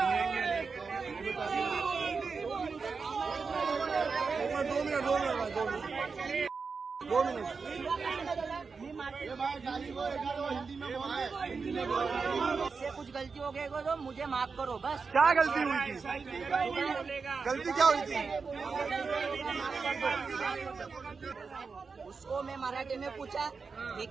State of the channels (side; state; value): left; quieter; 4.9 dB